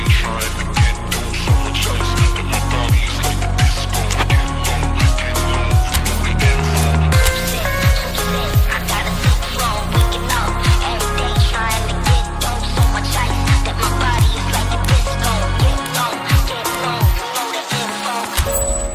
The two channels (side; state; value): both; identical; correlation 1.00